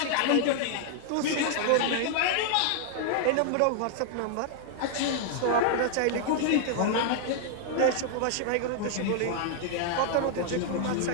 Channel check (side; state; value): both; different; correlation 0.00